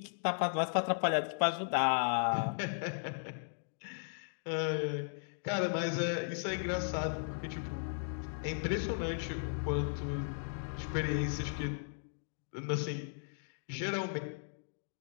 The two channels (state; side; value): silent; right; digital silence